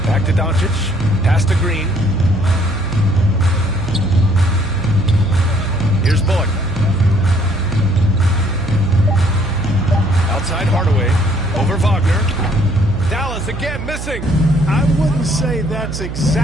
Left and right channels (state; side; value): noise; right; hum, 8 dB below the sound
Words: Back to Doncic. Pass to Green. Here's Bullock. Outside Hardaway. Over Wagner. Dallas again missing. I wouldn't say that's